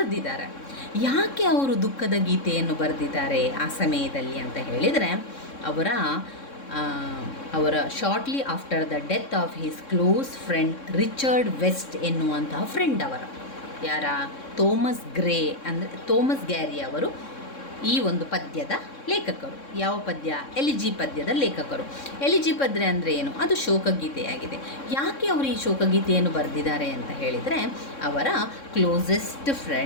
ಯಾಕೆ ಅವರು ದುಃಖದ ಗೀತೆಯನ್ನು ಬರೆದಿದ್ದಾರೆ ಆ ಸಮಯದಲ್ಲಿ ಅಂತ ಹೇಳಿದರೆ, ಅವರ shortly after the death of his close friend Richard West ಎನ್ನುವಂತಹ ಫ್ರೆಂಡ್ ಅವರ, ಯಾರ? ಥೋಮಸ್ ಗ್ಯಾರಿ ಅವರು ಈ ಒಂದು ಪದ್ಯದ ಲೇಖಕರು. ಯಾವ ಪದ್ಯ? ಎಲಿಜಿ ಪದ್ಯದ ಲೇಖಕರು. ಎಲಿಜಿ ಪದ್ಯ ಅಂದರೆ ಏನು? ಅದು ಶೋಕಗೀತೆಯಾಗಿದೆ. ಯಾಕೆ ಅವರು ಈ ಶೋಕಗೀತೆಯನ್ನು ಬರೆದಿದ್ದಾರೆ ಅಂತ ಹೇಳಿದರೆ, ಅವರ ಕ್ಲೋಸೆಸ್ಟ್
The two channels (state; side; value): late; right; 3.6 ms